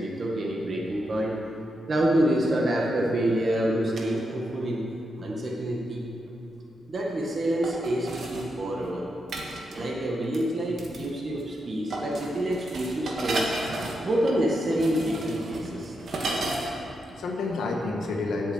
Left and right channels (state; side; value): normal; both; correlation 0.84